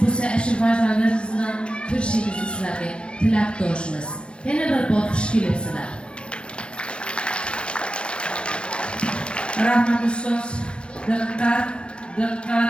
bo'lsa, shu farzandlaringiz bilan ko'rishingizni sizlarga tilakdoshmiz. Yana bir bor xush kelibsizlar. Rahmat ustoz. Diqqat,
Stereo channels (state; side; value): late; right; 0.056 ms